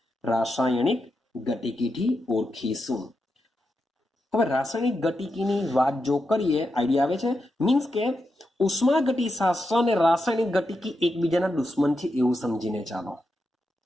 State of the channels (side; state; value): both; normal; correlation 0.86